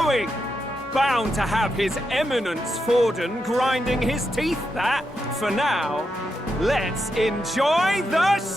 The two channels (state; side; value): normal; both; correlation 0.85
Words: Bound to have His Eminence Forden grinding his teeth, that, for now. Let's enjoy the